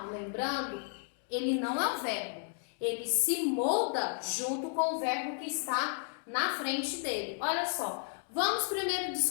lembrando, ele não é um verbo, ele se molda junto com o verbo que está na frente dele. Olha só, vamos primeiro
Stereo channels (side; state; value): right; silent; 56 dB below the other